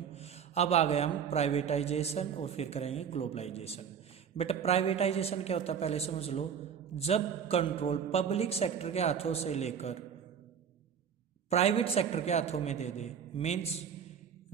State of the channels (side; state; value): left; quieter; 7.7 dB